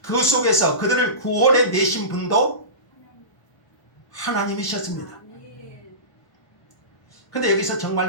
그 속에서 그들을 구원해 내신 분도 하나님이셨습니다. 그런데 여기서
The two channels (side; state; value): right; late; 1.0 ms